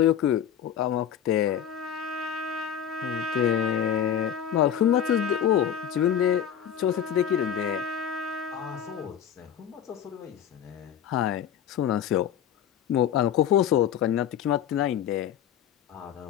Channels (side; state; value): right; quieter; 9.3 dB